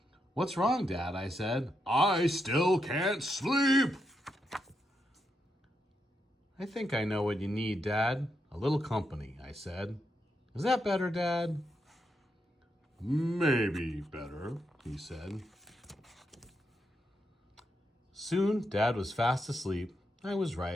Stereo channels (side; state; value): both; normal; correlation 0.82